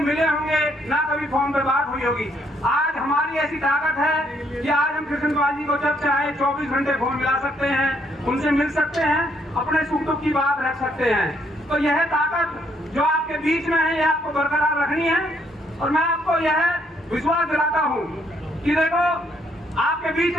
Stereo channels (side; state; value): both; normal; correlation 0.71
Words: होंगे, ना कभी फोन पे बात हुई होगी। आज हमारी ऐसी ताकत है कि आज हम कृष्णपाल जी को जब चाहे 24 घंटे फोन मिला सकते हैं, उनसे मिल सकते हैं, अपने सुख दुख की बात रख सकते हैं। तो यह ताकत जो आपके बीच में है, यह आपको बरकरार रखनी है। और मैं आपको यह विश्वास दिलाता हूँ कि देखो, आपके बीच